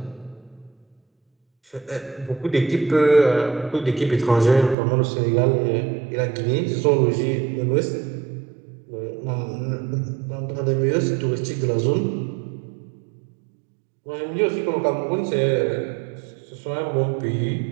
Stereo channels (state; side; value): drops out; left; at 4.8 s